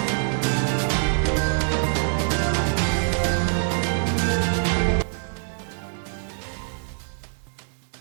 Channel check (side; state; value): left; silent; digital silence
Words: heerkayga saddexaad kooxahan soo ciyaaray haddaan ka